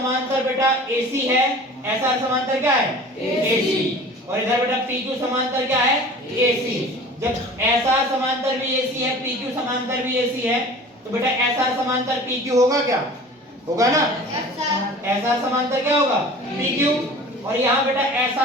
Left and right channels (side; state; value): both; normal; correlation 0.42